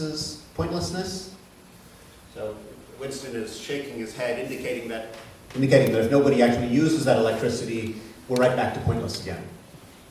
pointlessness? So Winston is shaking his head, indicating that if nobody actually uses that electricity, we're right back to pointless again.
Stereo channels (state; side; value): identical; both; correlation 1.00